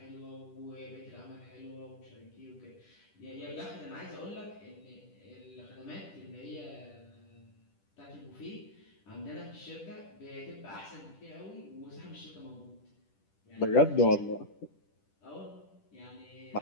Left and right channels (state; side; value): late; right; 10 ms